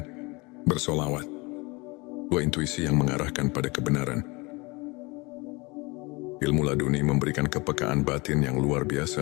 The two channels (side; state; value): right; quieter; 25.8 dB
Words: bersolawat. Dua intuisi yang mengarahkan pada kebenaran. Ilmu laduni memberikan kepekaan batin yang luar